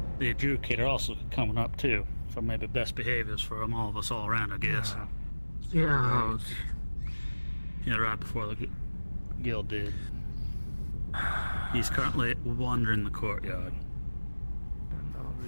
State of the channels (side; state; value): both; inverted; correlation -1.00